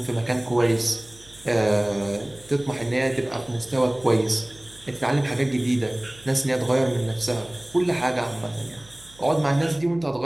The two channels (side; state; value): right; noise; hum, 24 dB below the sound